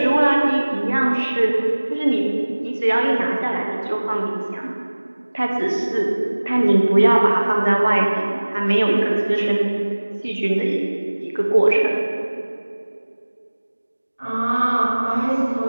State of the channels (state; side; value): inverted; both; correlation -1.00